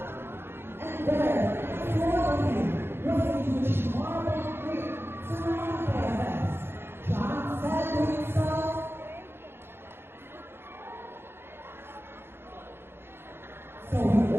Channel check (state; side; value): late; left; 0.11 ms